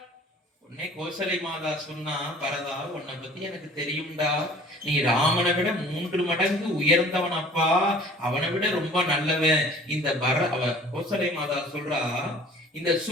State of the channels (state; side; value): normal; both; correlation 0.49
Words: உன்னை கோசலை மாதா சொன்னா, பரதா உன்னை பத்தி எனக்கு தெரியும்டா. நீ ராமனை விட 3 மடங்கு உயர்ந்தவன் அப்பா. அவனை விட ரொம்ப நல்லவன். இந்த கோசலை மாதா சொல்றா, இந்த